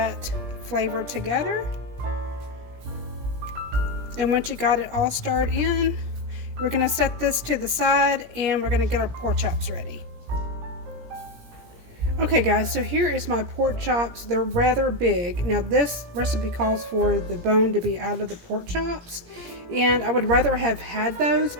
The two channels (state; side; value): late; left; 17 ms